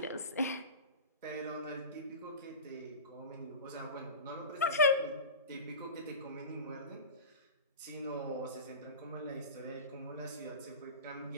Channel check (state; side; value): inverted; both; correlation -0.30